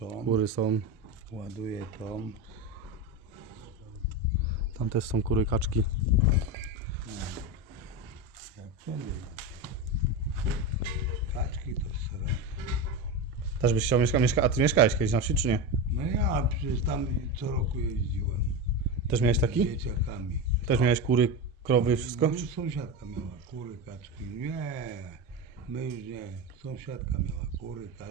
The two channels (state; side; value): normal; both; correlation 0.18